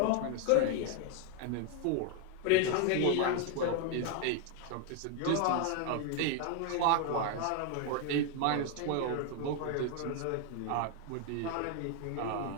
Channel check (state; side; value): different; both; correlation 0.01